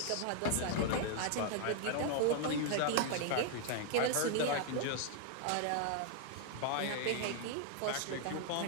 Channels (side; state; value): both; different; correlation 0.00